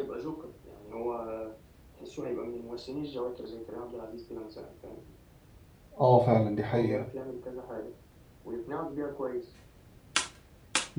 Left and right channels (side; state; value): both; identical; correlation 1.00